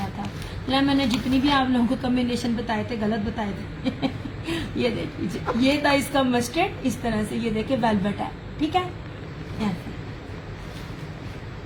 था। मैंने जितनी भी आप लोगों को कॉम्बिनेशन बताए थे गलत बताए थे। ये देख लीजिए, ये था इसका मस्टर्ड, इस तरह से। ये देखिए वेलवेट है। ठीक है,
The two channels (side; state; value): both; identical; correlation 1.00